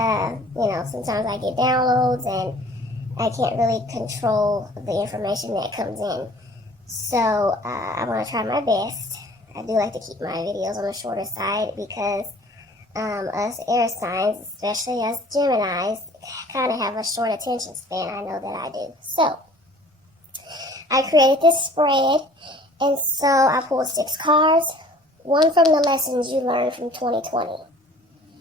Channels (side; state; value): both; normal; correlation 0.50